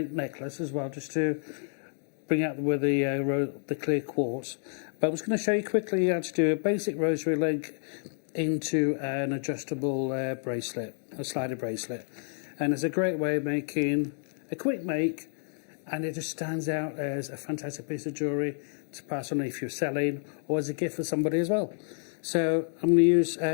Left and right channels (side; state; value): right; silent; 58 dB below the other